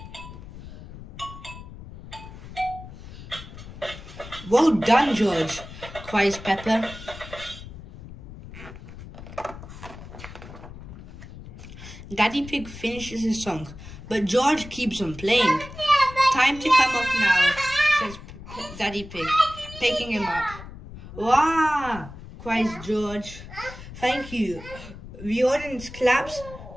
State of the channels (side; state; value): left; noise; rumble, 14 dB below the sound